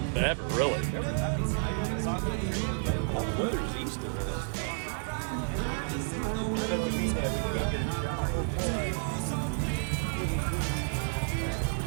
ever, really. That doesn't mean that we can't get a shot.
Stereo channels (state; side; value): silent; left; 57 dB below the other